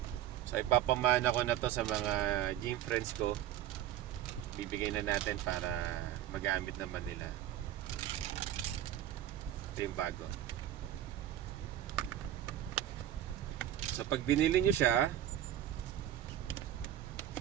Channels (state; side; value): quieter; left; 12.0 dB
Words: So ipapamana ko na to sa mga gym friends ko. Bibigay na natin para magamit naman nila. Ito yung bago. So pag binili nyo siya,